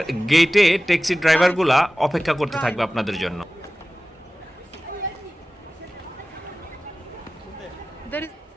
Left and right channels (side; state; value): both; normal; correlation 0.96